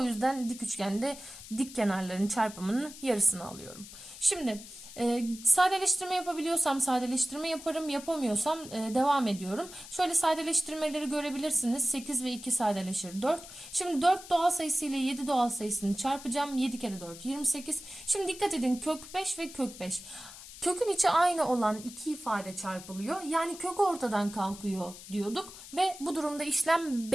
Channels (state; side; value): noise; left; hiss, 15 dB below the sound